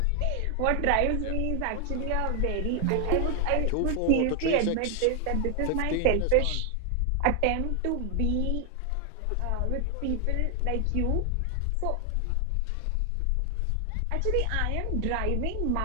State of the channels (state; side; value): different; both; correlation 0.00